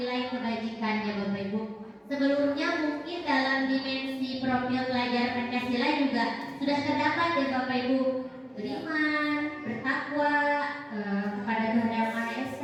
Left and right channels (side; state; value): both; identical; correlation 1.00